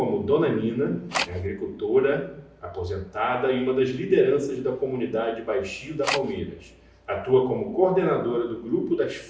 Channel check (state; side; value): identical; both; correlation 1.00